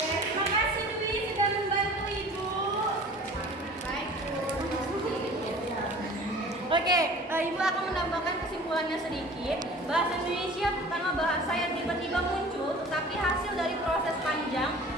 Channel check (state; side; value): normal; both; correlation 0.44